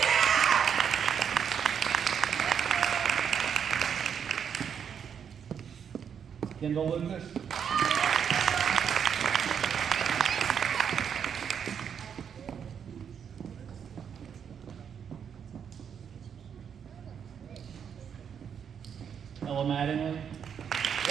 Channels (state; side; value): quieter; left; 7.7 dB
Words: Kendall Lucas. Ella Mattingly.